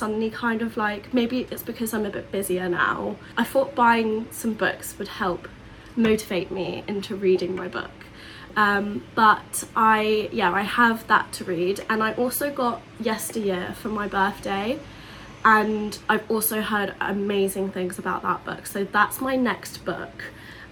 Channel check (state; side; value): identical; both; correlation 1.00